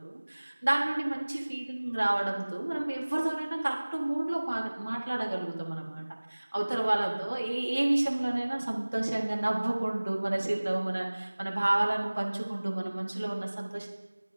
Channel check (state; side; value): inverted; both; correlation -1.00